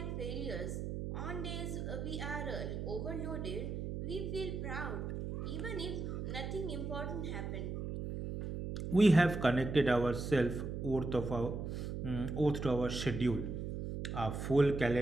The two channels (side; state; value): right; noise; hum, 4 dB below the sound